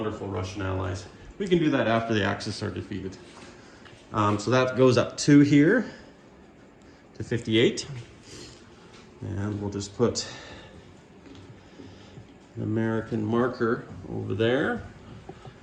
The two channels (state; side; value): identical; both; correlation 1.00